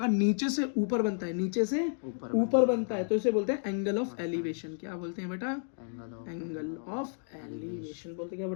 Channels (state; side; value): silent; right; 57 dB below the other